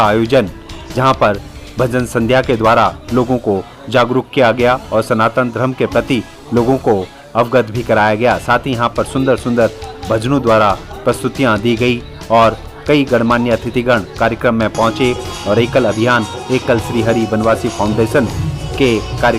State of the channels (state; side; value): identical; both; correlation 1.00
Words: आयोजन, जहां पर भजन संध्या के द्वारा लोगों को जागरूक किया गया और सनातन धर्म के प्रति लोगों को अवगत भी कराया गया। साथ ही यहाँ पर सुंदर सुंदर भजनों द्वारा प्रस्तुतियाँ दी गई और कई गणमान्य अतिथिगण कार्यक्रम में पहुंचे और एकल अभियान एकल श्री हरि बनवासी फाउंडेशन के